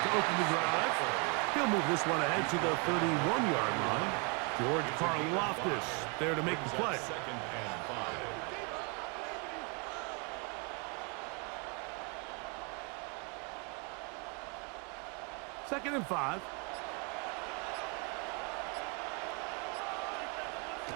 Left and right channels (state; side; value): quieter; left; 34.0 dB